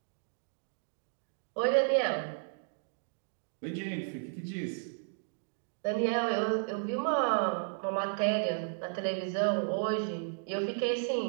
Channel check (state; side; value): silent; left; digital silence